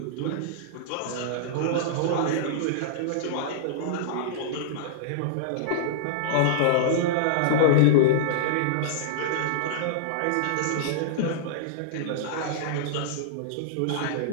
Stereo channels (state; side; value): different; both; correlation -0.02